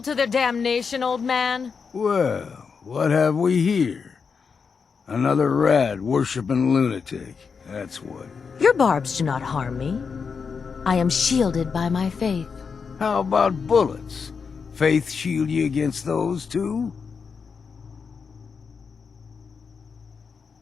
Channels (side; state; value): right; quieter; 5.7 dB